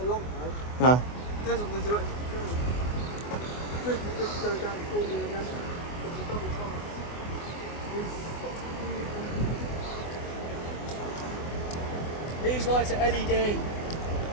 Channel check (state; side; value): late; right; 24 ms